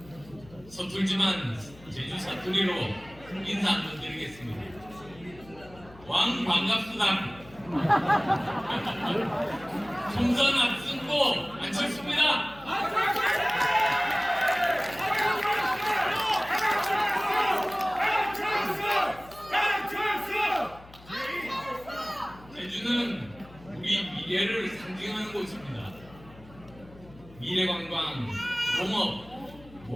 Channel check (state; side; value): noise; left; hum, 21 dB below the sound